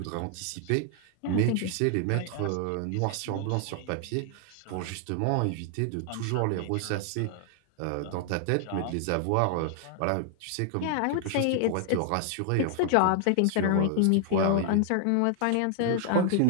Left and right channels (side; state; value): both; different; correlation 0.00